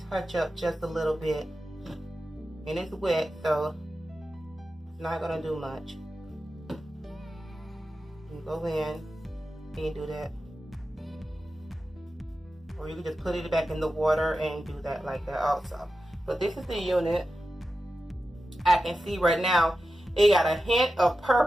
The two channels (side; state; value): both; normal; correlation 0.92